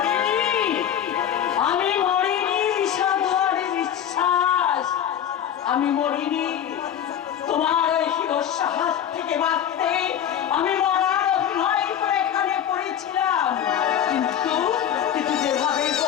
আমি মরিনি সাধুর বিশ্বাস আমি মরিনি তোমার ওই হিরস্য হাত থেকে বাঁচতে আমি মরার অভিনয় করে এখানে পড়েছিলাম কিন্তু কিন্তু যেভাবে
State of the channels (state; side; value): quieter; right; 9.6 dB